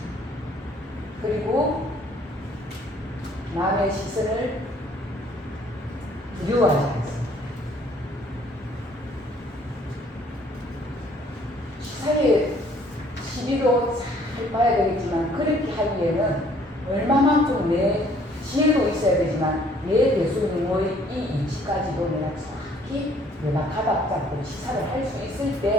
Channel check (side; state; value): both; normal; correlation 0.60